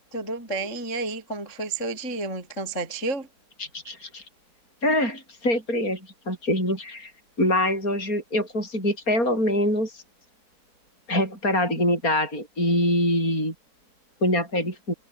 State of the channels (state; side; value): late; right; 4.3 ms